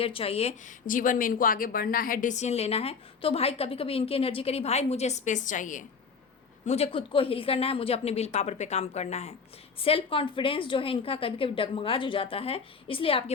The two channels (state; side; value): quieter; right; 5.5 dB